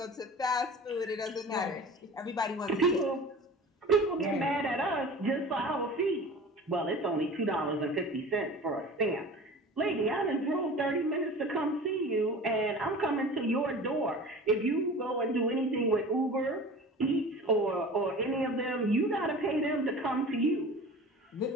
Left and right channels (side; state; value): both; normal; correlation 0.38